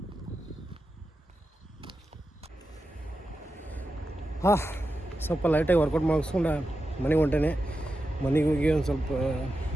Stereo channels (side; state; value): both; normal; correlation 0.90